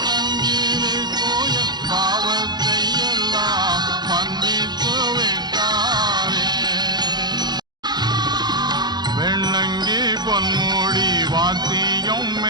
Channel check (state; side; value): late; left; 0.20 ms